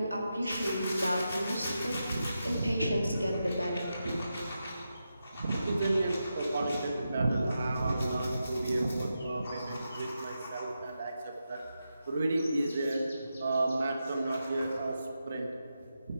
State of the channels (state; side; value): inverted; both; correlation -0.88